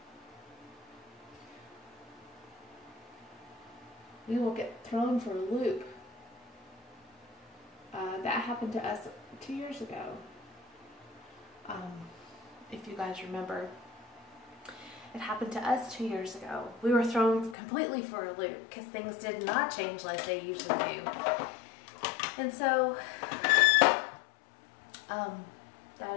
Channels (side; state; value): right; drops out; at 17.6 s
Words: we will get thrown for a loop. That happened to us 2 years ago. If you guys remember, it happened to us 2 years ago. We were thrown completely for a loop because things did not change like they usually do. And so,